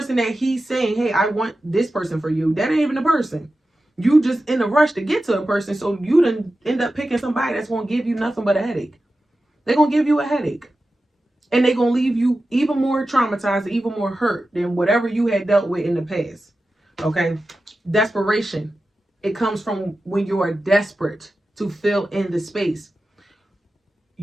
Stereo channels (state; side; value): normal; both; correlation 0.93